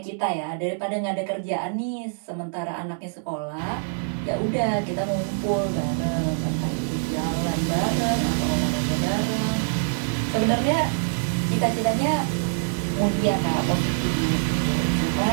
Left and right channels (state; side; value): silent; left; digital silence